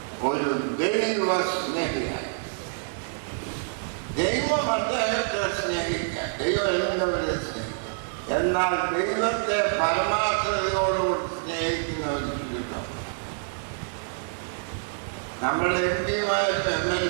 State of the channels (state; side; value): silent; left; 60 dB below the other